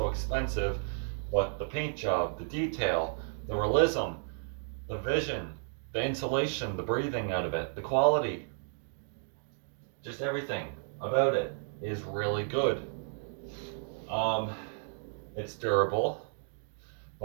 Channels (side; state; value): left; silent; digital silence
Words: expensive, but the paint job, the detail, the realism, the vision, the insulation, the breathing out of it, the quality, just everything about it is really good. Um, it's durable,